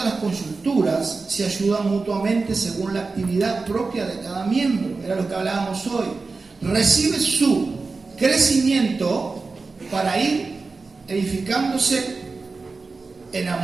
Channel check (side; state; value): left; quieter; 4.1 dB